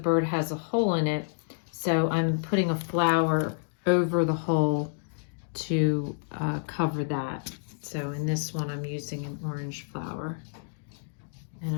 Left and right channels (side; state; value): right; silent; digital silence